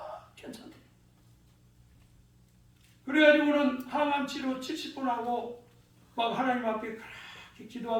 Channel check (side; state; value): both; identical; correlation 1.00